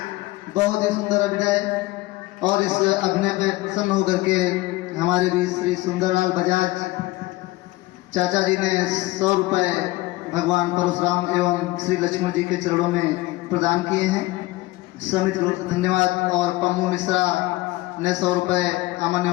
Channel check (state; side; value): quieter; right; 19.5 dB